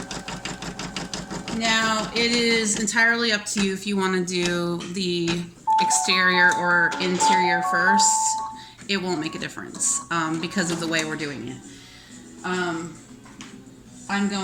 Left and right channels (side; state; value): both; identical; correlation 1.00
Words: Now, it is entirely up to you if you want to do the exterior or interior first. It won't make a difference because of the way we're doing it. I'm